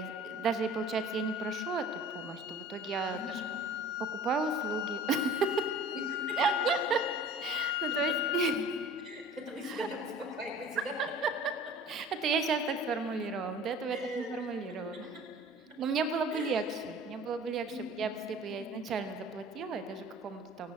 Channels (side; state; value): both; normal; correlation 0.45